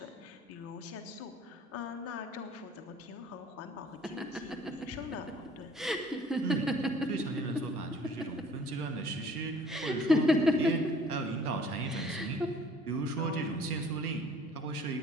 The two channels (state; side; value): normal; both; correlation 0.53